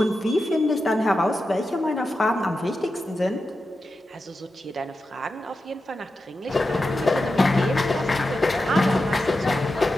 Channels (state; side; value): normal; both; correlation 0.90